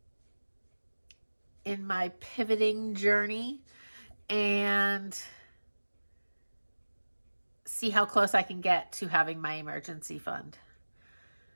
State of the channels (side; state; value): both; inverted; correlation -1.00